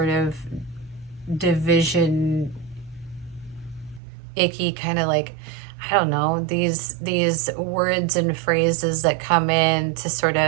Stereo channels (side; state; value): left; drops out; at 4.0 s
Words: of division, icky kind of, like, I don't know, these words and phrases that come in to sort